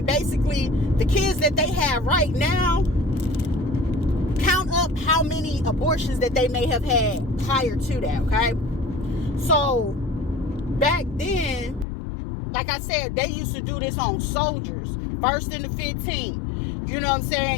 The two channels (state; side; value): drops out; right; at 11.9 s